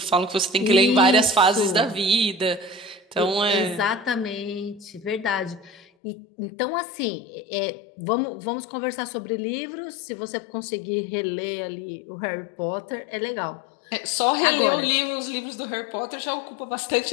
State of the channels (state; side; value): drops out; right; at 5.8 s